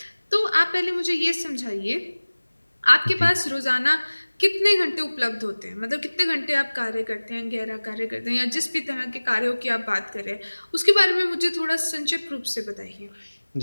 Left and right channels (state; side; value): inverted; both; correlation -1.00